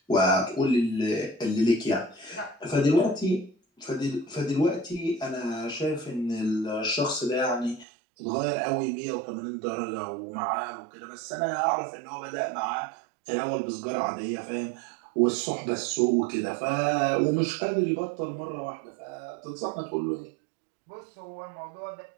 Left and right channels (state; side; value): drops out; left; at 7.9 s